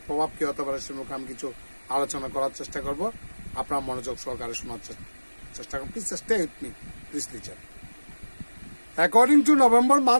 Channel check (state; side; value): inverted; both; correlation -1.00